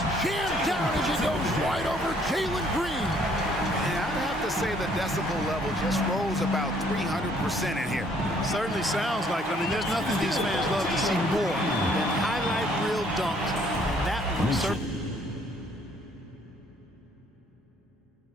jammed down as he goes right over Jalen Green. And I'd have to say the decibel level just rose about 300% in here. Certainly sounds like it. I mean, there's nothing these fans love to see more than highlight reel dunks. And that one certainly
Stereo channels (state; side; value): normal; both; correlation 0.63